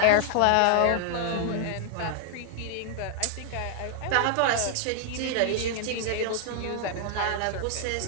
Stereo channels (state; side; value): different; both; correlation 0.00